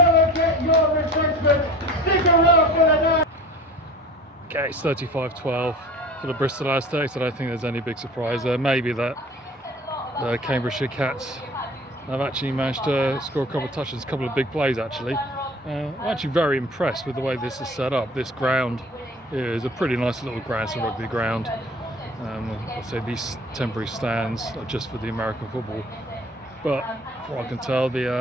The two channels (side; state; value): both; normal; correlation 0.43